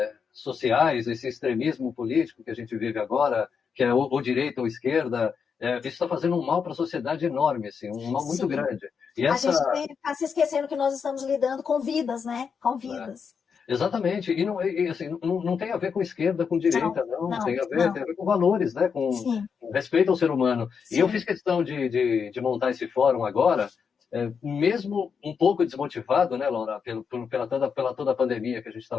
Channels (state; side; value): quieter; right; 6.3 dB